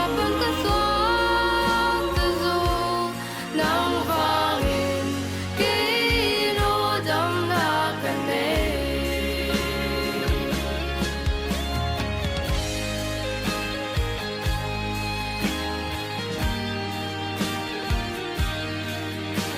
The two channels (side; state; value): both; identical; correlation 1.00